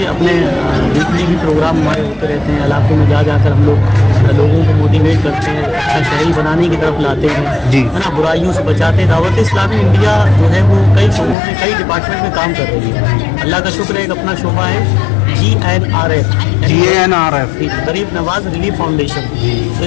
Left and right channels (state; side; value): drops out; right; at 11.4 s